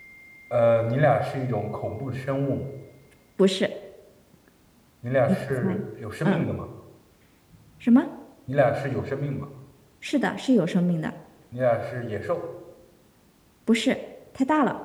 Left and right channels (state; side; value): identical; both; correlation 1.00